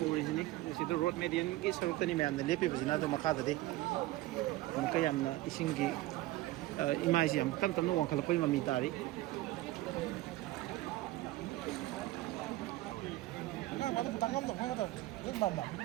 ꯎꯔꯤꯁꯤꯅꯤ ꯁꯤꯗ ꯔꯣꯗ ꯃꯦꯗꯤꯌꯟꯒꯤ ꯁꯔꯨꯛꯇꯅꯤ ꯃꯌꯥꯝꯅ ꯂꯦꯞꯄꯤꯕꯁꯤꯅ ꯑꯗꯨ ꯃꯈꯥꯗꯗꯤ ꯑꯃꯨꯛꯀ ꯌꯥꯝꯅ ꯏꯁꯤꯡꯒꯤ ꯏꯃꯥꯏꯁꯤ ꯌꯥꯝ ꯇꯞ ꯇꯞꯅ ꯋꯥꯡꯈꯠꯂꯛꯄꯒꯤ ꯃꯃꯤ ꯇꯥꯔꯤ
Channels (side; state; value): left; quieter; 17.5 dB